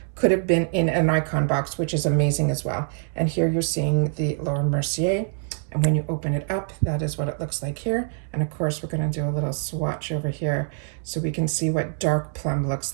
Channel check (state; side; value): silent; left; 62 dB below the other